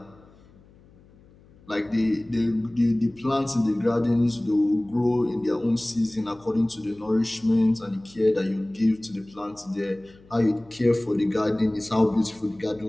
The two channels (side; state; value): left; noise; hum, 27 dB below the sound